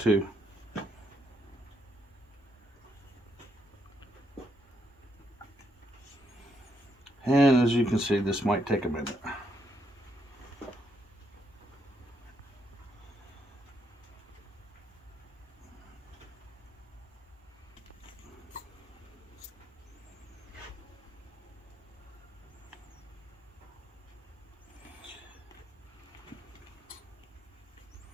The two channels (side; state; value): both; normal; correlation 0.77